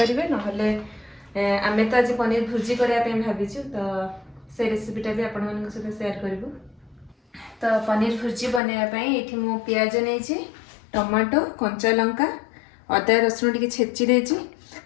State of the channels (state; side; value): drops out; right; at 8.6 s